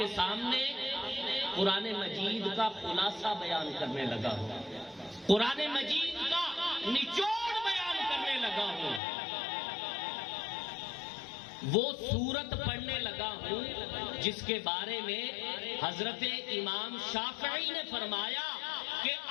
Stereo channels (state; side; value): drops out; right; at 9.0 s